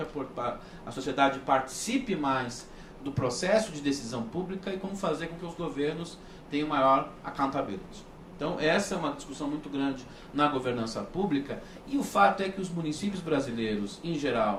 a sociedade participe mais do processo de decisão pública e como fazer com que os governos tenham maior accountability. Então essa é uma discussão muito grande na governança pública e o fato é que os municípios brasileiros, em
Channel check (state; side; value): identical; both; correlation 1.00